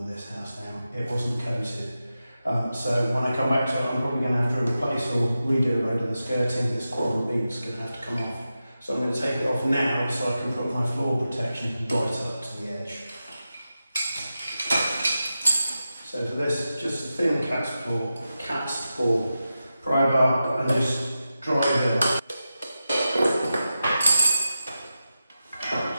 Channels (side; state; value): both; inverted; correlation -0.92